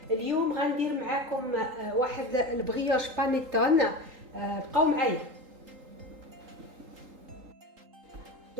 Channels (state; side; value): late; left; 3.8 ms